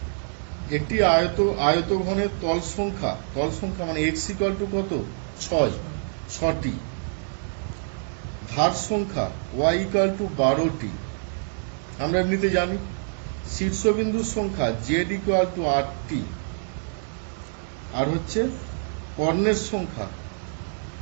একটি আয়তঘনের তল সংখ্যা মানে x ইকুয়াল টু কত, 6টি। ধার সংখ্যা y ইকুয়াল টু 12টি, আমরা এমনিতে জানি। শীর্ষবিন্দুর সংখ্যা z ইকুয়াল টু 8টি। আর হচ্ছে কর্ণের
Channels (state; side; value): silent; left; digital silence